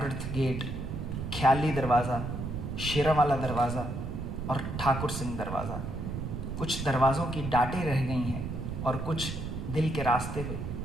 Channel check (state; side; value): noise; right; rumble, 5 dB below the sound